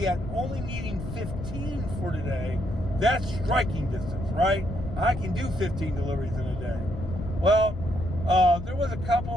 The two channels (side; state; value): left; noise; rumble, 8 dB below the sound